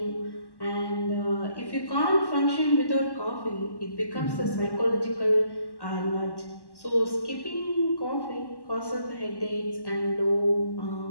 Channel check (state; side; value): late; right; 1.1 ms